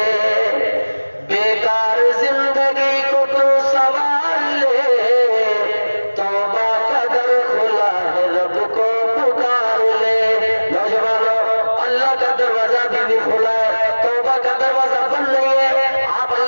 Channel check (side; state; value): both; inverted; correlation -1.00